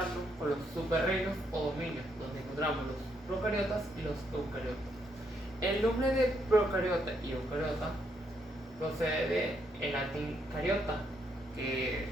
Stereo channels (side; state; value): both; normal; correlation 0.75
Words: con los superreinos o dominios, donde encontramos los procariotas y los eucariotas. El nombre de procariota y eucariota procede del latín cariota, que